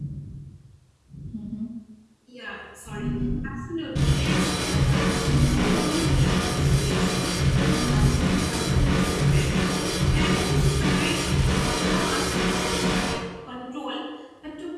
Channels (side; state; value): both; identical; correlation 1.00